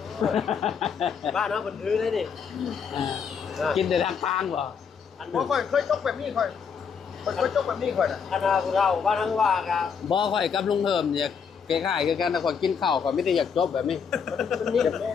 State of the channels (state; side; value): quieter; right; 6.5 dB